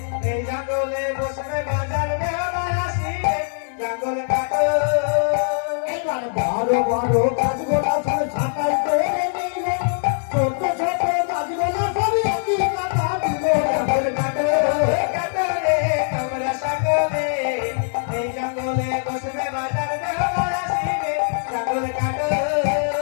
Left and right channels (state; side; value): silent; right; digital silence